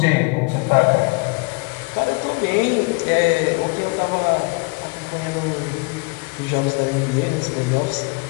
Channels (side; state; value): right; quieter; 30.0 dB